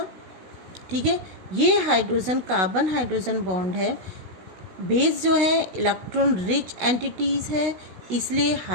ठीक है। ये हाइड्रोजन कार्बन हाइड्रोजन बॉन्ड है, बेस जो है इलेक्ट्रॉन रिच एंटिटीज़ है, इसलिए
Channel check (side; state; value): left; late; 16 ms